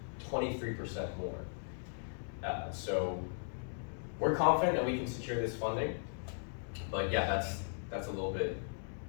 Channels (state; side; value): silent; right; digital silence